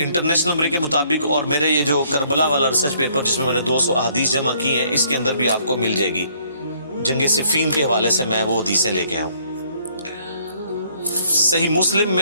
نمبر کے مطابق، اور میرے یہ جو کربلا والا ریسرچ پیپر جس میں میں نے 200 احادیث جمع کی ہیں، اس کے اندر بھی آپ کو مل جائے گی۔ جنگ صفین کے حوالے سے میں وہ حدیثیں لے کے آیا ہوں۔ صحیح مسلم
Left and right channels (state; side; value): inverted; both; correlation -0.65